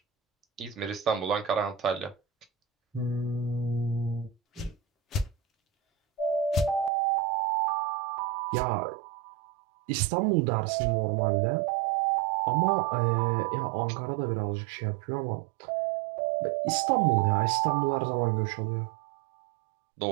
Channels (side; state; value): left; drops out; at 6.9 s